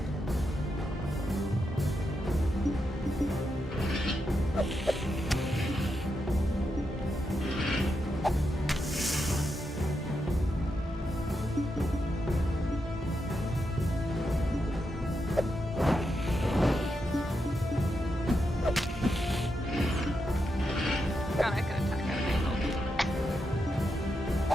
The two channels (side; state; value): both; normal; correlation 0.85